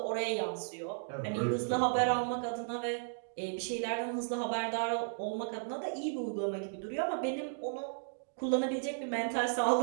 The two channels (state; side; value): silent; left; digital silence